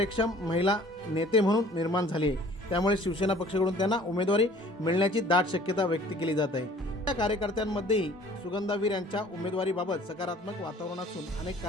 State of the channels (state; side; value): normal; both; correlation 0.52